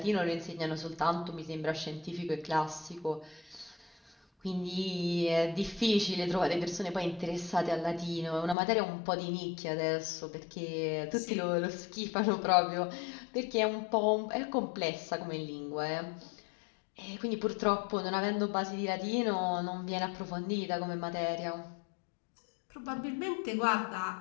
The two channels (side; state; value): right; drops out; at 8.6 s